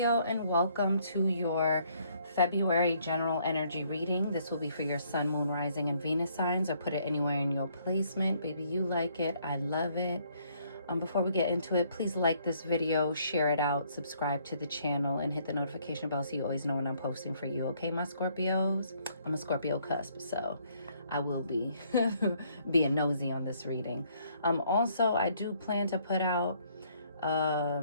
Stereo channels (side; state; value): both; inverted; correlation -0.66